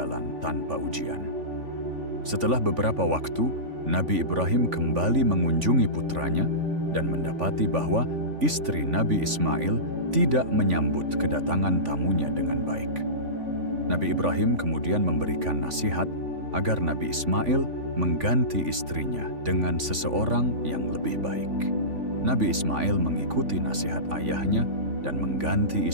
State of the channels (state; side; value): late; left; 3.5 ms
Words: tanpa ujian. Setelah beberapa waktu, Nabi Ibrahim kembali mengunjungi putranya dan mendapati bahwa istri Nabi Ismail tidak menyambut kedatangan tamunya dengan baik. Nabi Ibrahim kemudian memberikan nasihat agar Nabi Ismail mengganti istrinya dengan seseorang yang lebih baik. Nabi Ismail mengikuti nasihat ayahnya dan mengganti